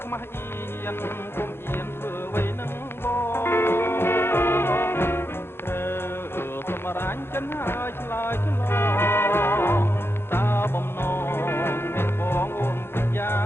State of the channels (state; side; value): late; right; 0.11 ms